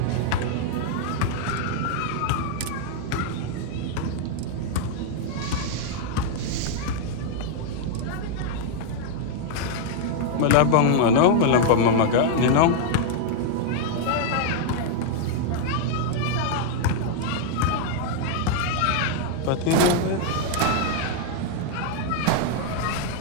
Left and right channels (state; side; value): different; both; correlation 0.00